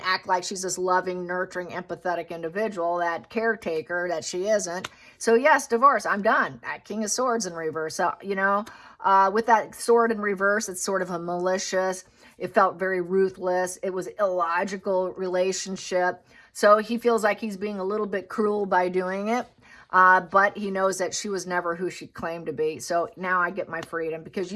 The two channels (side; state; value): both; identical; correlation 1.00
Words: act like she's this loving, nurturing, empathetic individual, that caretaker that she isn't. So yes, divorce. I'm done. That King of Swords in reverse. So, you know, with that sword in reverse, it's sort of a malicious. It felt very ruthless. It was illogical relationship. So he feels like he's being a little bit cruel by doing it. But he knows that she was never who she claimed to be. So now I get my freedom, because